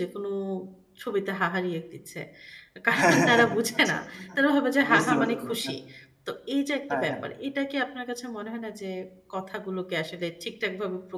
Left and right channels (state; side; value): identical; both; correlation 1.00